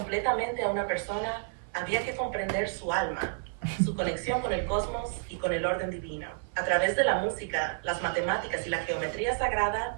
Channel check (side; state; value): left; silent; 58 dB below the other